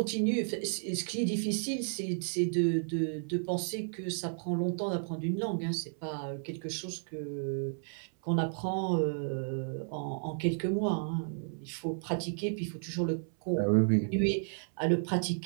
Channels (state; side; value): silent; left; 56 dB below the other